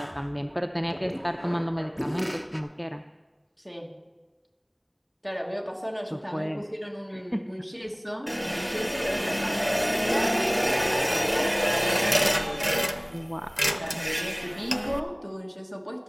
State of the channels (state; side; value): identical; both; correlation 1.00